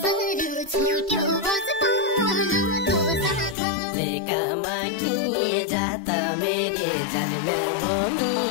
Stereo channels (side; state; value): right; drops out; at 3.6 s